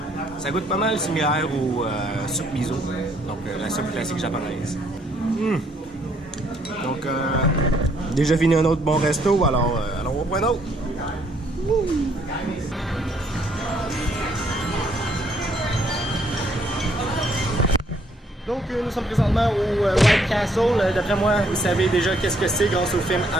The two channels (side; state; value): both; normal; correlation 0.68